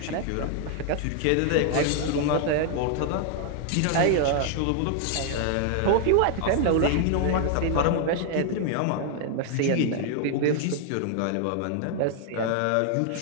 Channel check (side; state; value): both; different; correlation 0.00